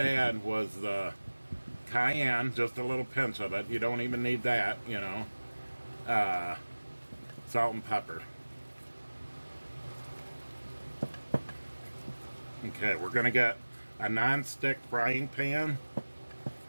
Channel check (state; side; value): inverted; both; correlation -1.00